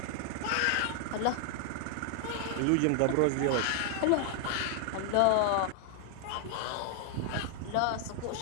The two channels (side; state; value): both; different; correlation 0.00